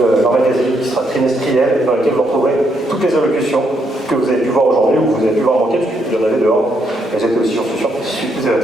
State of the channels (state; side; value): normal; both; correlation 0.76